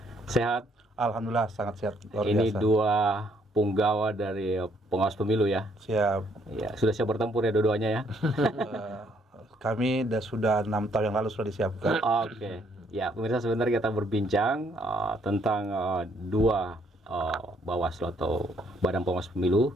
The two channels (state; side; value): normal; both; correlation 0.68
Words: Sehat? Alhamdulillah sangat sehat. Luar Ini biasa. dua punggawa dari pengawas pemilu ya. Siap. Ya, sudah siap bertempur ya dua-duanya ya. Kami sudah 6 tahun yang lalu sudah disiapkan. Oke. Ya, pemirsa sebentar kita berbincang tentang dua Bawaslu atau Badan Pengawas Pemilu